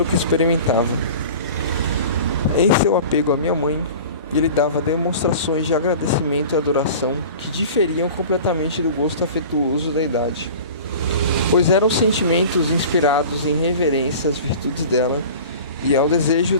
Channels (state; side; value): inverted; both; correlation -0.39